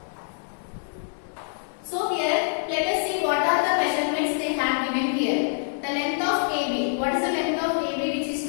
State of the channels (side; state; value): right; silent; digital silence